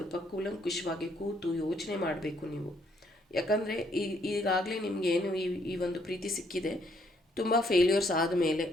ಕೂಲಂಕುಷವಾಗಿ ಕೂತು ಯೋಚನೆ ಮಾಡಬೇಕು ನೀವು. ಯಾಕಂದರೆ ಈಗಾಗಲೇ ನಿಮಗೇನು ಈ ಒಂದು ಪ್ರೀತಿ ಸಿಕ್ಕಿದೆ, ತುಂಬ ಫೇಲ್ಯೂರ್ಸ್ ಆದಮೇಲೆ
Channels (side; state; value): both; normal; correlation 0.69